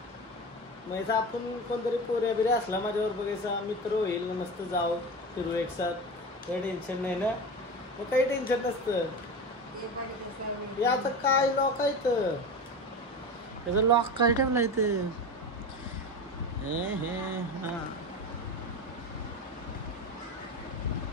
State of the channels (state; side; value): normal; both; correlation 0.26